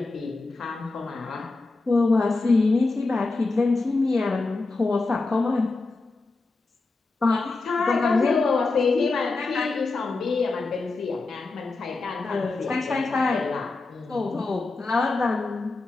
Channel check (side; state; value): right; quieter; 3.5 dB